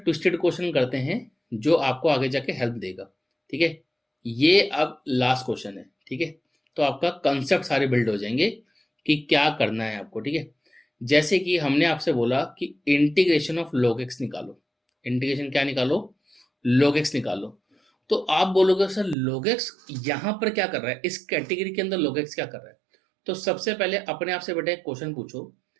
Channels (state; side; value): drops out; left; at 19.2 s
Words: क्वेश्चन करते हैं जो आपको आगे जाके हेल्प देगा, ठीक है। ये अब लास्ट क्वेश्चन है, ठीक है। तो आपका कंसेप्ट सारे बिल्ड हो जाएंगे कि क्या करना है आपको, ठीक है। जैसे कि हमने आपसे बोला कि इंटीग्रेशन ऑफ log x निकालो, इंटीग्रेशन क्या निकालो, log x निकालो। तो आप बोलोगे सर log x यहां पर क्या कर रहा है, इस कैटेगरी के अंदर log x क्या कर रहा है। तो सबसे पहले अपने आप से बेटा एक क्वेश्चन पूछो,